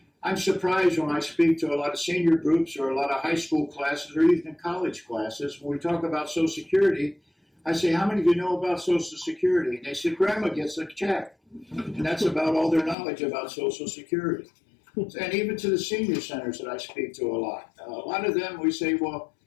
I'm surprised when I speak to a lot of senior groups or a lot of high school classes or even college classes, when we talk about Social Security, I say, how many of you know about Social Security? And they say, Grandma gets a check. And that's about all their knowledge about Social Security. And even to the senior centers that I speak to a lot of them, we say, well,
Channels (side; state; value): right; drops out; at 13.0 s